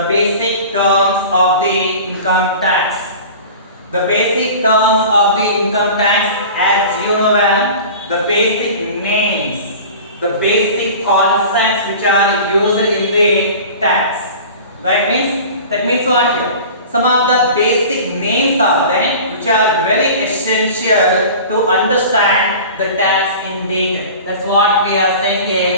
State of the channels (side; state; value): both; inverted; correlation -0.38